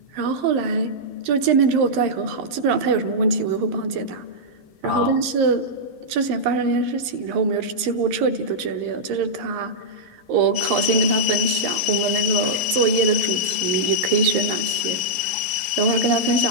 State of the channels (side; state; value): left; late; 11 ms